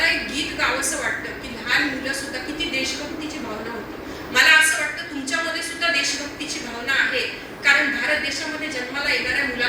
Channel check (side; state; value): both; identical; correlation 1.00